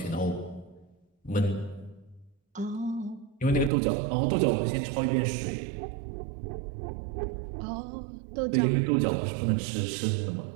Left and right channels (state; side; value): drops out; left; at 3.7 s